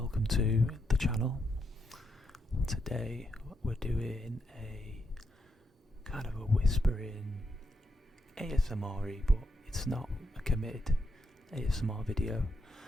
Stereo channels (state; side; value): normal; both; correlation 0.81